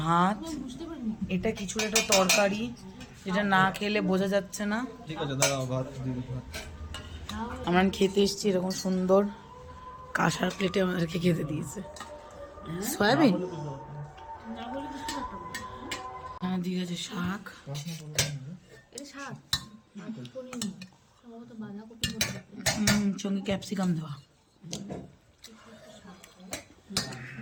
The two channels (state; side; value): identical; both; correlation 1.00